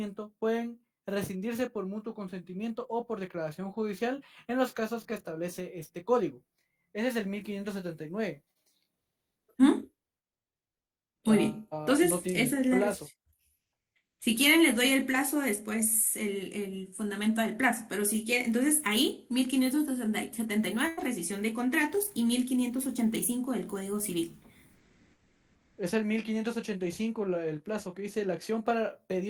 pueden rescindirse por mutuo consentimiento o por declaración judicial en los casos que establece este código. Ese es el 1579. ¿Mm? Muy bien. Entonces, no tiene esa es la plazo. Si quieren, les doy el plazo después, el fundamento del plazo. Pero si quieren, entonces ahí, 1579, rescisión de contratos, y 1585 del Código Civil. Es el 1585 el plazo que dice la acción para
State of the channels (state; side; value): identical; both; correlation 1.00